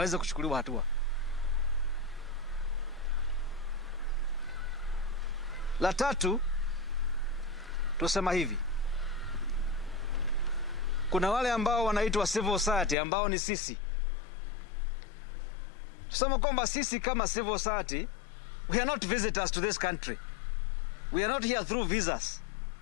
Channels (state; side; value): drops out; right; at 13.0 s